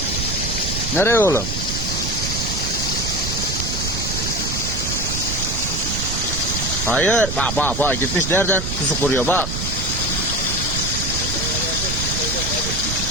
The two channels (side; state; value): right; noise; rumble, 4 dB below the sound